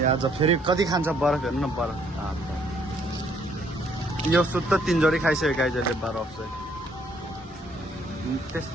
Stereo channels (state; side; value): normal; both; correlation 0.66